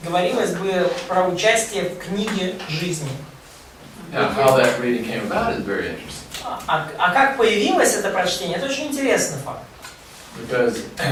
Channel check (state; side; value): identical; both; correlation 1.00